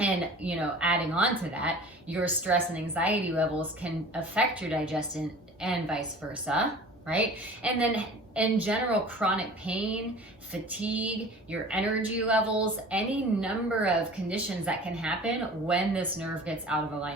you know, adding on to that, your stress and anxiety levels can affect your digestion and vice versa, right? And then in general, chronic pain, fatigue, your energy levels, any number of conditions that can happen when this nerve gets out of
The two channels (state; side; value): normal; both; correlation 0.42